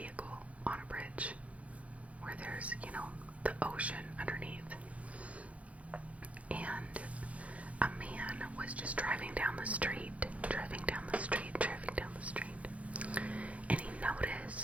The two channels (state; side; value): late; left; 0.065 ms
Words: on a bridge where there's, the ocean underneath. And a man was just driving down the street. And he